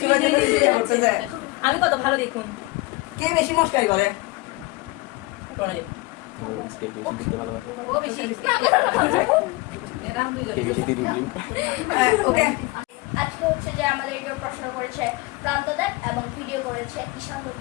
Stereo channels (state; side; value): quieter; right; 22.5 dB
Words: চুলে চুলে করতেছে। আমি কত ভালো দেখুন। কে বেশি মস্কারি করে? প্রণয়। ও বেশি। এরা দুইজনে। ওকে, আজকে হচ্ছে যে আমাদের কেউ প্রশ্ন করেছে প্রান্তদার এবং ভিডিও করেছে ঈশান